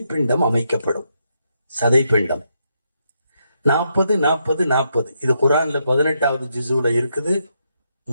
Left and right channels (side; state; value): both; inverted; correlation -0.79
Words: அமைக்கப்படும். சதைப்பிண்டம் 40 இது குர்ஆன்ல 18வது ஜுஸுல இருக்குது.